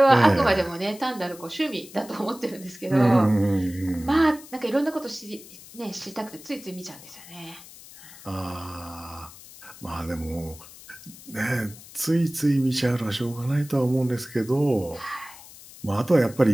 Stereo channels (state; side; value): noise; left; hiss, 19 dB below the sound